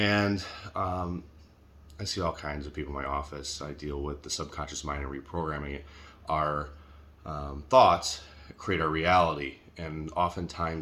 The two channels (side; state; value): both; identical; correlation 1.00